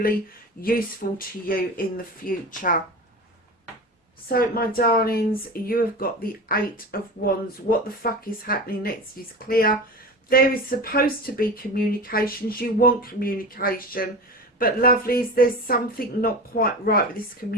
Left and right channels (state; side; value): normal; both; correlation 0.30